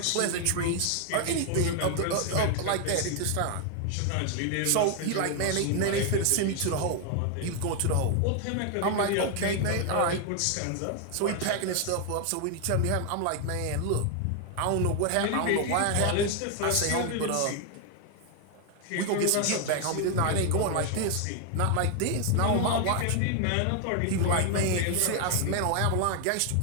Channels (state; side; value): different; both; correlation 0.00